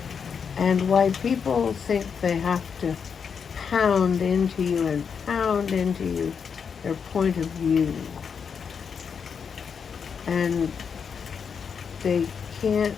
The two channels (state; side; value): quieter; right; 6.5 dB